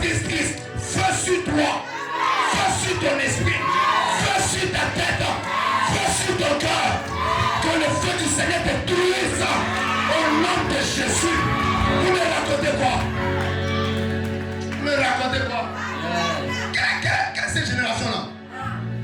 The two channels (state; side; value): identical; both; correlation 1.00